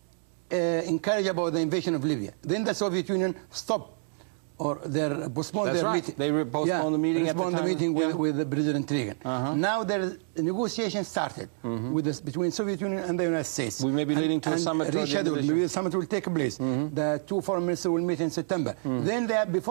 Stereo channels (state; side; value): silent; left; 57 dB below the other